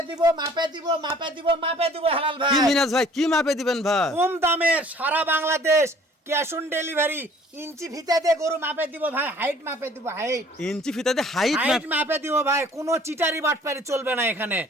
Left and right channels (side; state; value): both; normal; correlation 0.54